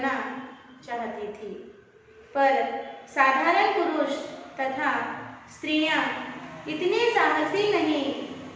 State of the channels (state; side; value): identical; both; correlation 1.00